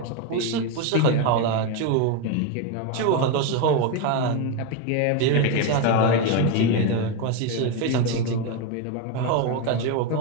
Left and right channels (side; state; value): both; different; correlation 0.03